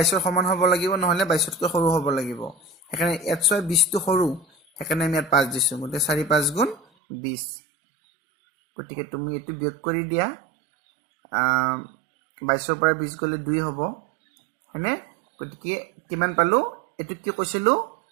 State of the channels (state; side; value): drops out; left; at 6.8 s